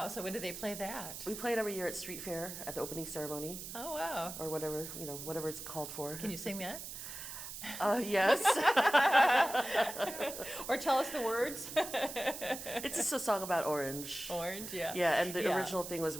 So when do they play that? We play it every year at Street Fair at the opening ceremony. Oh, wow. Or whatever it's called for. Can you sing that? Yes. Or tell us the words. It's just a song about orange. Orange, yeah. Yeah, and the original thing was,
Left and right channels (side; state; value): right; noise; hiss, 9 dB below the sound